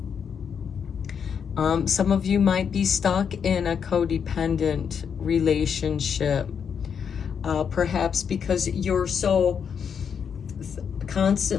Some of you might be stuck in a codependent relationship, perhaps because you're so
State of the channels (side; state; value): right; quieter; 7.1 dB